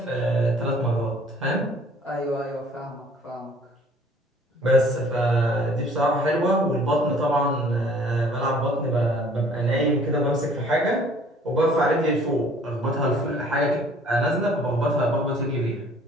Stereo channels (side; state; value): both; normal; correlation 0.55